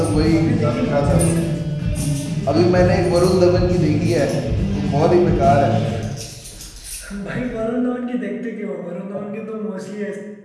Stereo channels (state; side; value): identical; both; correlation 1.00